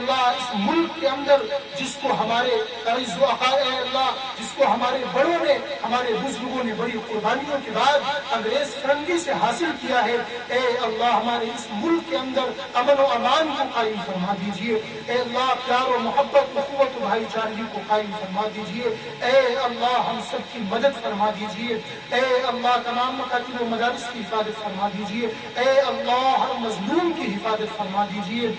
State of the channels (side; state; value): both; identical; correlation 1.00